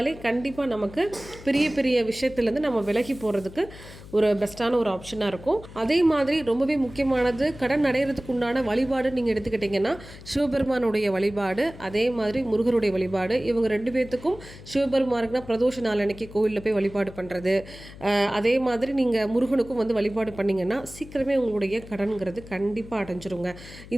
கண்டிப்பாக நமக்கு பெரிய பெரிய விஷயத்துலேருந்து நம்ம விலகி போகிறதுக்கு ஒரு பெஸ்ட்டான ஒரு ஆப்ஷனாக இருக்கும். அதே மாதிரி ரொம்பவே முக்கியமானது கடன் அடைகிறதுக்கு உண்டான வழிபாடு நீங்கள் எடுத்துக்கிட்டிங்கன்னா சிவபெருமானுடைய வழிபாடு, அதே மாதிரி முருகருடைய வழிபாடு. இவங்க 2 பேர்த்துக்கும் சிவபெருமானுக்குனா பிரதோஷ நாள் அன்னைக்கு கோவிலில் போய் வழிபாடு பண்ணுறது, அதே மாதிரி நீங்கள் முருகனுக்கும் வந்து வழிபாடு பண்ணிங்கன்னா சீக்கிரமே உங்களுடைய கடன்கிறது கண்டிப்பாக அடைஞ்சிருங்க.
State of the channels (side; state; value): left; noise; hum, 17 dB below the sound